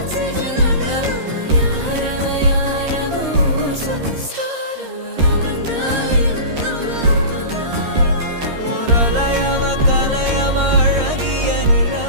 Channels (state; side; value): late; left; 13 ms